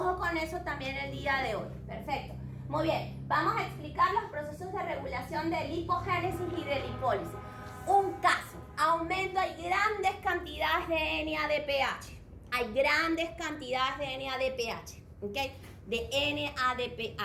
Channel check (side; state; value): both; identical; correlation 1.00